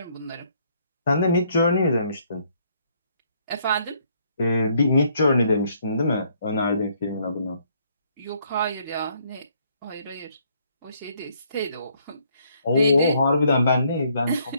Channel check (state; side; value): inverted; both; correlation -0.68